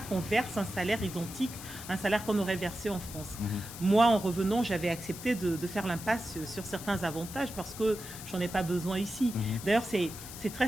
verse un salaire identique à un salaire qu'on aurait versé en France. Moi, en revenant, j'avais accepté de faire l'impasse sur certains avantages parce que j'en ai pas besoin ici. D'ailleurs, c'est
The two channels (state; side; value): noise; left; hiss, 12 dB below the sound